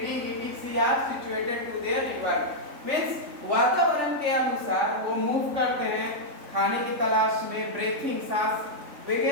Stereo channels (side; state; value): left; late; 3.5 ms